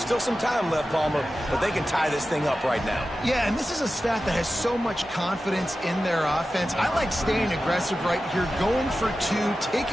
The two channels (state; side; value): normal; both; correlation 0.93